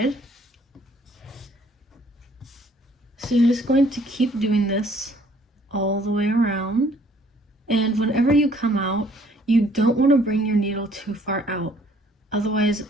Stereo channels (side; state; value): both; normal; correlation 0.60